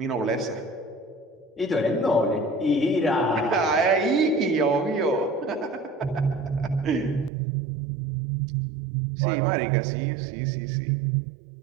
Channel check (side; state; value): left; drops out; at 7.3 s